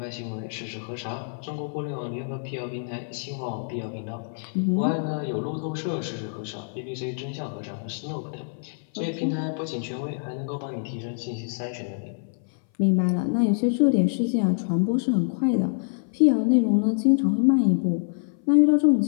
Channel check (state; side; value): silent; right; 59 dB below the other